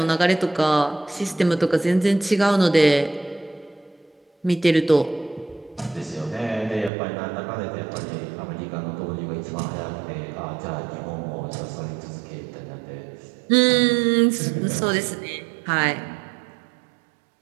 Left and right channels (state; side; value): drops out; left; at 6.9 s